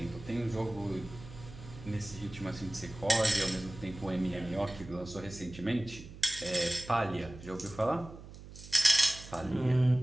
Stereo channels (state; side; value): noise; right; hum, 15 dB below the sound